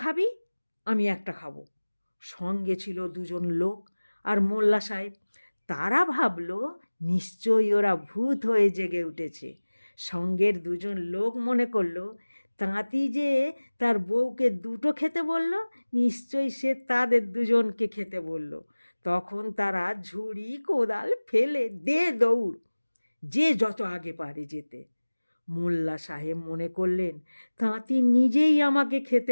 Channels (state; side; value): inverted; both; correlation -1.00